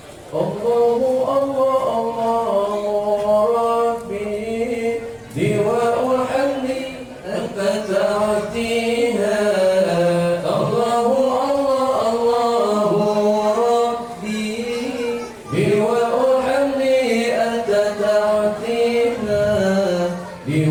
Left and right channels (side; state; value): both; identical; correlation 1.00